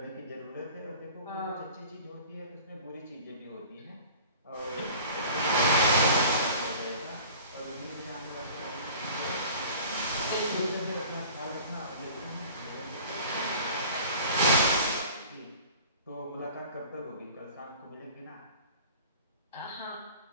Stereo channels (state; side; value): inverted; both; correlation -0.44